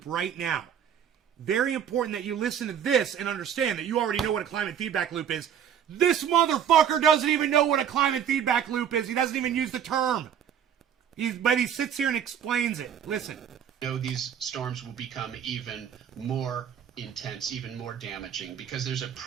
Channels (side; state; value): left; quieter; 8.8 dB